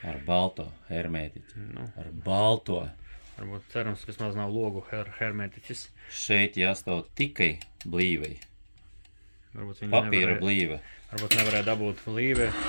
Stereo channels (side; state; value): both; inverted; correlation -1.00